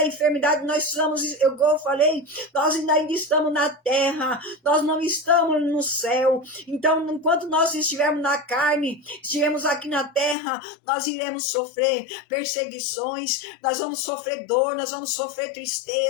enfermidade, nós somos, eu falei, nós ainda estamos na terra, nós não estamos no céu. Então, enquanto nós estivermos na carne, estivermos aqui na terra, nós iremos sofrer perseguições, nós vamos sofrer dor, nós vamos sofrer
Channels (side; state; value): right; drops out; at 10.4 s